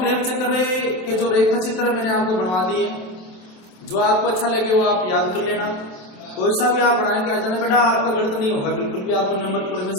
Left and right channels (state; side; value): late; right; 27 ms